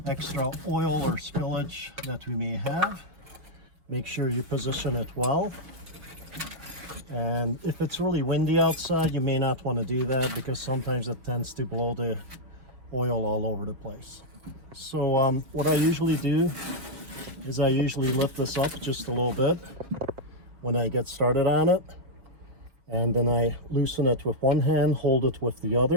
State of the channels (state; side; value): late; left; 4.8 ms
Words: extra oil or spillage that we may have. Make sure you position it well. And if it's really windy outside, you may not want to do that, because sometimes it tends to blow the oil all over the place. So what I usually do is I usually lift this up just a little bit when I get started on it, and then I loosen it with one hand, hold it with the